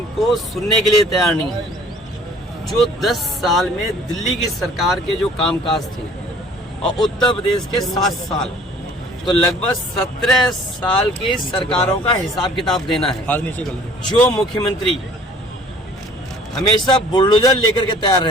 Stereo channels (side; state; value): both; normal; correlation 0.52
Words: सुनने के लिए तैयार नहीं है। जो 10 साल में दिल्ली की सरकार के जो कामकाज थे और उत्तर प्रदेश के 7 साल, तो लगभग 17 साल की सरकारों का हिसाब किताब देना है। जो मुख्यमंत्री हमेशा बुलडोजर लेकर के तैयार